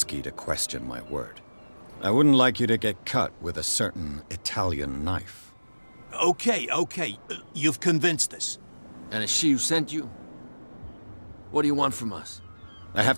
to question my word. I wouldn't like you to get cut with a certain Italian knife. Okay. You've convinced us. And it's she who sent you? What do you want from us? I have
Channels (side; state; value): both; inverted; correlation -1.00